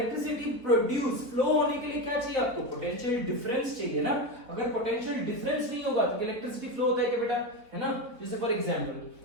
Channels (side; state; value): left; late; 4.0 ms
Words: produce, flow होने के लिए क्या चाहिए आपको, पोटेंशियल डिफरेंस चाहिए ना। अगर पोटेंशियल डिफरेंस नहीं होगा तो इलेक्ट्रिसिटी फ्लो होता है क्या बेटा, है ना। जैसे फॉर